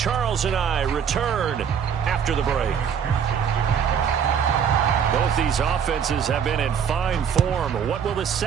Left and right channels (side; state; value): left; quieter; 7.6 dB